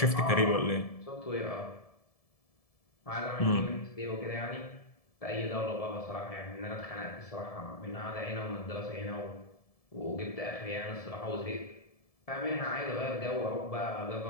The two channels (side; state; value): right; late; 1.7 ms